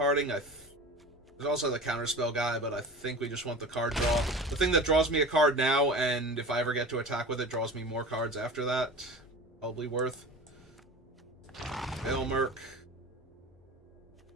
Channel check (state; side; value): normal; both; correlation 0.36